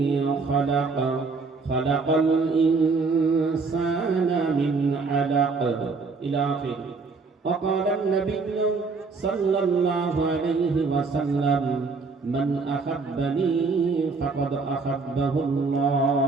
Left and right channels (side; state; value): left; quieter; 4.3 dB